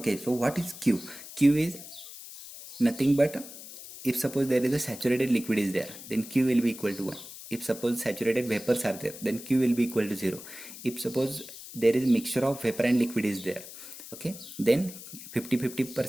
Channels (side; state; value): left; noise; hiss, 14 dB below the sound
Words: so what is Q? Q is nothing but, if suppose there is a saturated liquid is there, then Q will be equal to 1. If suppose saturated vapors are there, then Q will be equal to 0. If suppose there is a mixture of vapor and liquid is there, okay, then